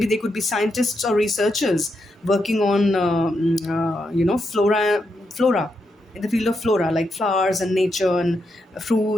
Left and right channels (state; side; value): normal; both; correlation 0.83